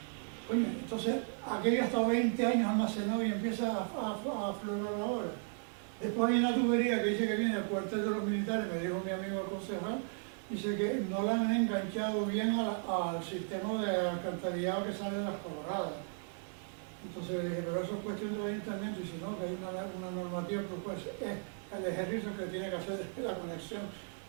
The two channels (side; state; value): left; silent; 54 dB below the other